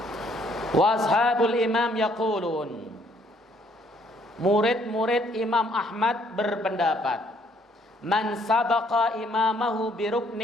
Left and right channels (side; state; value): both; normal; correlation 0.65